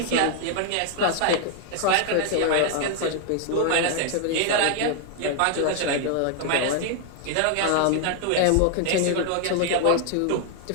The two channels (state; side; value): different; both; correlation 0.00